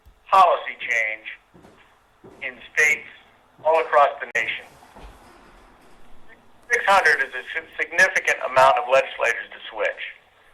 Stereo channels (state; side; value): identical; both; correlation 1.00